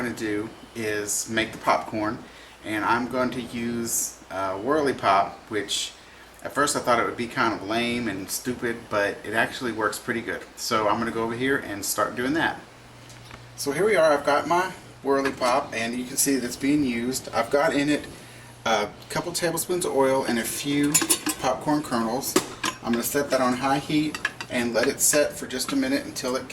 going to do is make the popcorn, and I'm going to use Whirly Pop, which at first I thought it would be kind of lame and stupid, but it actually works pretty good. So I'm going to go over here and start doing that. So here we are. I've got my Whirly Pop, and you can see that it's being used. I've got in it a couple tablespoons of oil and a few popcorn kernels. I'm going to set that on high heat and let it set for just a minute until it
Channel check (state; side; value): identical; both; correlation 1.00